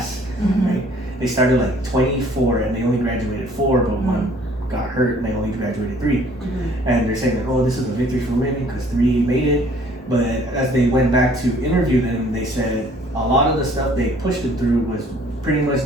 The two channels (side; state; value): both; normal; correlation 0.57